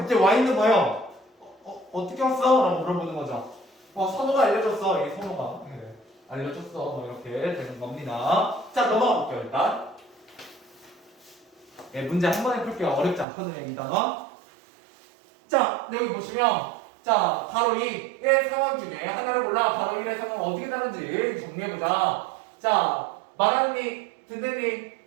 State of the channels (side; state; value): left; drops out; at 13.2 s